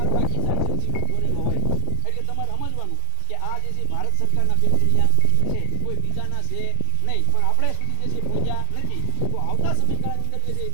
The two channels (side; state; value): both; different; correlation 0.00